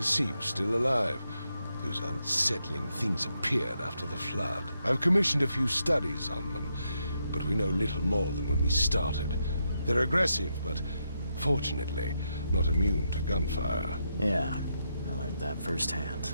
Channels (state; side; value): inverted; both; correlation -0.82